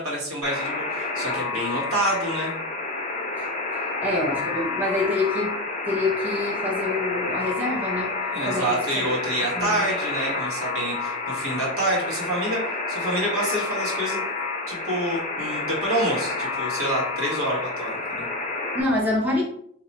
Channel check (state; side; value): normal; both; correlation 0.11